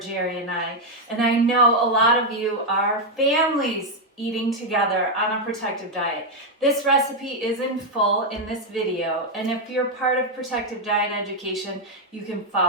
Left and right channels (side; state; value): both; normal; correlation 0.01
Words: and I know a lot of you are families eating together on a protective diet. This recipe is in full in this video, and if you're part of protective diet education, you can